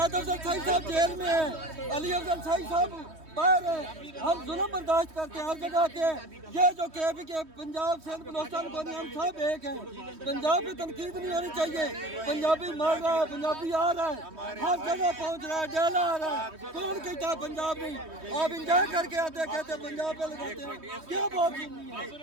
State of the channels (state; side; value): late; left; 3.2 ms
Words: अफजल साहिब जेल में है, अली अफजल साहिब बाहर है। हम जुल्म बर्दाश्त करते हैं हर जगह के। ये जो KP के पंजाब सिंध बलोचिस्तान को नहीं, हम सब एक हैं। पंजाब की तनकीद नहीं होनी चाहिए। पंजाबी मर रहा है, पंजाबी आ रहा है, हर जगह पहुंच रहा है, जेल आ रहा है। कौन कहता है पंजाब नहीं? आप इंजॉय करके आते कहते पंजाब पे लगाते हैं, क्या बात सुननी है?